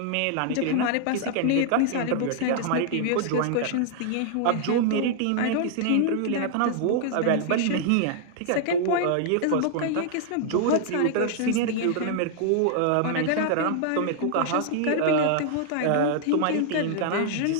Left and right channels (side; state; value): both; different; correlation -0.01